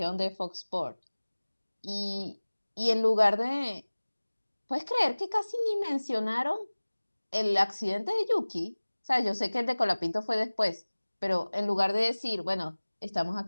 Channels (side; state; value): both; inverted; correlation -1.00